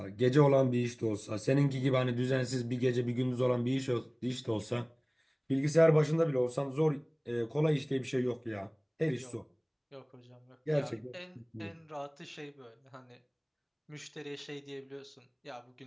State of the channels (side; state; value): both; identical; correlation 1.00